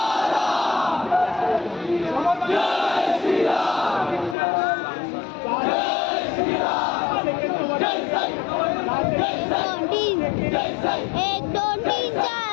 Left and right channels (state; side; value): drops out; right; at 4.4 s